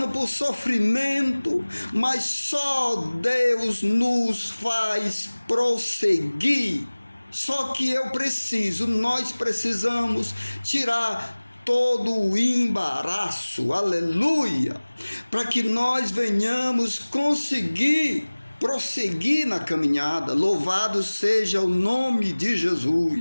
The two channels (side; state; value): both; inverted; correlation -1.00